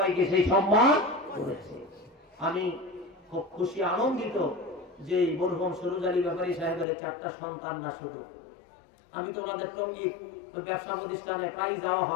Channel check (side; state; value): right; drops out; at 6.9 s